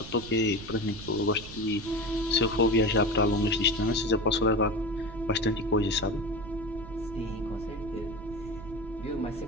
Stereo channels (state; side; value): noise; right; rumble, 14 dB below the sound